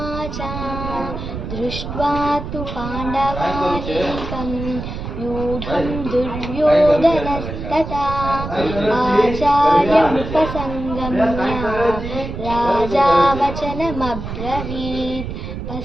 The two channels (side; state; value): right; noise; rumble, 7 dB below the sound